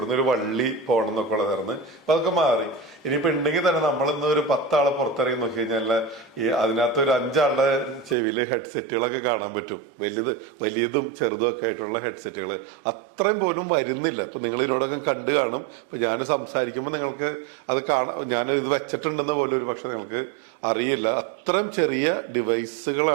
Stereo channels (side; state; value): left; drops out; at 8.2 s